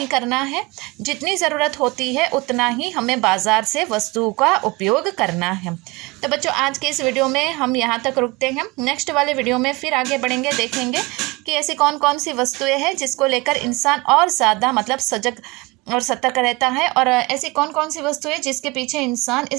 करना है। जितनी ज़रूरत होती है उतना ही हमें बाज़ार से वस्तुओं का उपयोग करना है। तो बच्चों आज के इस वीडियो में हम यहाँ तक रुकते हैं। नेक्स्ट वाले वीडियो में फिर आगे बढ़ेंगे, देखेंगे कि ऐसी कौन कौन सी वस्तुएं हैं जिसको लेकर इंसान और ज़्यादा मतलब सजग और सतर्क रहता है, और ऐसी कौन कौन सी वस्तुएं जिसके पीछे इंसान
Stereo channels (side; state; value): left; quieter; 24.2 dB